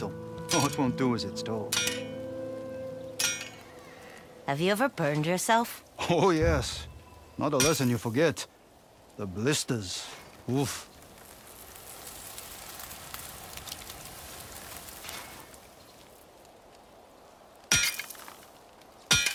All it won't do as it's told. Have you ever burned yourself? Oh, yes. Not a lesson you forget. The blisters. Oof.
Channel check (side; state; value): both; identical; correlation 1.00